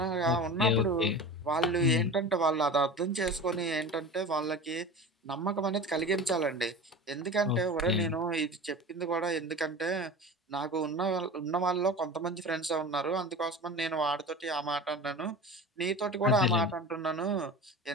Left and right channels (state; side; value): normal; both; correlation 0.34